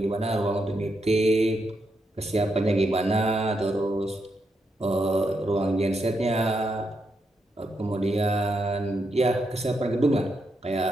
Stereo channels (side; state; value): both; normal; correlation 0.82